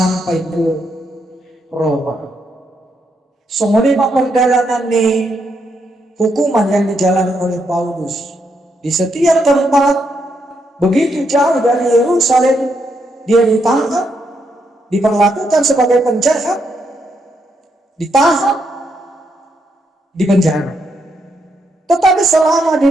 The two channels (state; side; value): normal; both; correlation 0.78